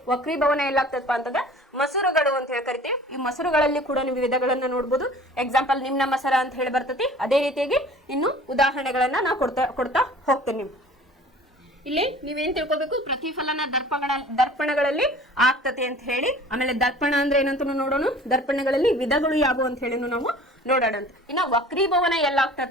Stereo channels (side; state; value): both; normal; correlation 0.46